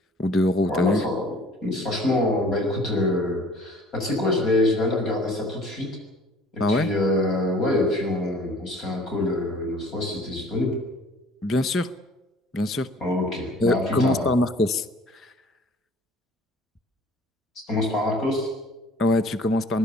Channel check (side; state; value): both; normal; correlation 0.51